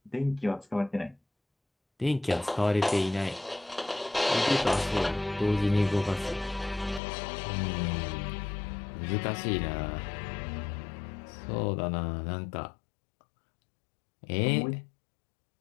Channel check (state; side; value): drops out; right; at 7.0 s